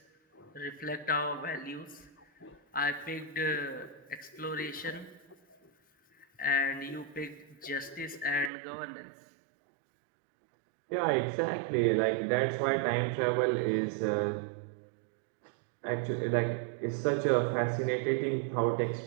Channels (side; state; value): left; drops out; at 8.5 s